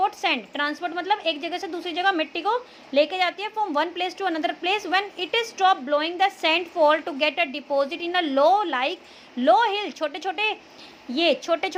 sand, transport मतलब एक जगह से दूसरी जगह मिट्टी को लेके जाती है from one place to another place. When it is stop blowing the sand fall to get a deposit in a low hill, छोटे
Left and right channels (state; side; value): identical; both; correlation 1.00